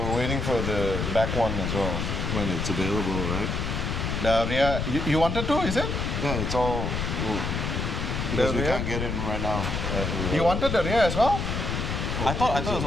waiting for the back one as well. when it's available, right? The rear, you wanted to, is it? Yeah, it's all because we rear? can't get in right now. You wanted the rear as well? I thought it was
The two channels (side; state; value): left; noise; rumble, 2 dB below the sound